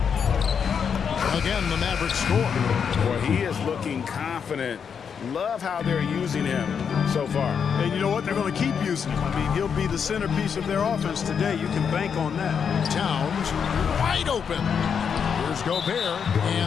Again, the Mavericks score. Boy, he is looking confident. Love how they're using him so far. And you know what? They're going to keep using him. I mean, he'll be the centerpiece of their offense today. You can bank on that. Towns wide open. Here's Gobert,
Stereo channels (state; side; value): quieter; right; 6.9 dB